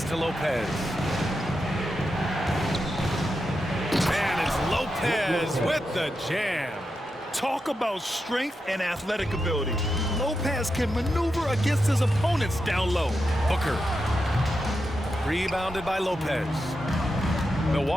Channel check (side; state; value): both; normal; correlation 0.87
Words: to Lopez. And it's Lopez with the jam. Talk about strength and athletic ability. Lopez can maneuver against his opponents down low. Booker. Rebounded by Lopez.